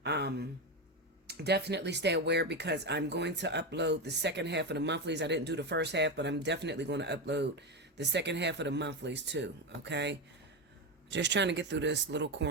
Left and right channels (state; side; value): normal; both; correlation 0.14